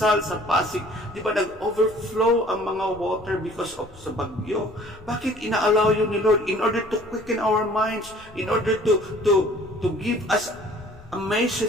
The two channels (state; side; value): noise; left; rumble, 24 dB below the sound